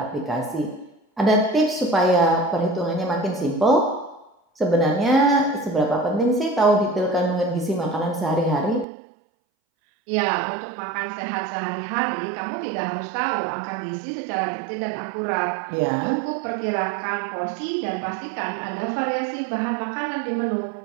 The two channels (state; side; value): drops out; left; at 8.8 s